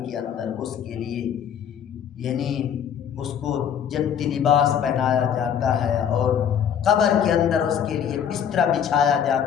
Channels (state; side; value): quieter; right; 8.5 dB